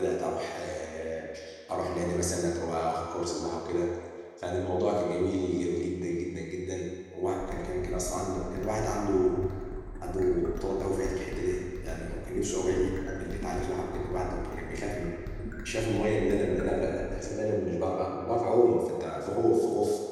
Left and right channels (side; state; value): both; identical; correlation 1.00